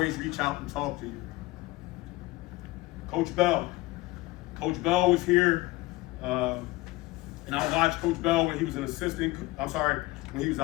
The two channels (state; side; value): quieter; right; 20.7 dB